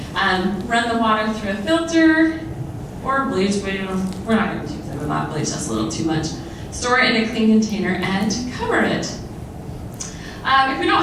run the water through a filter or bleach. We're not going to use it without bleach. That's a little too much. Store it in a clean container and cover it. If we don't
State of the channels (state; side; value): identical; both; correlation 1.00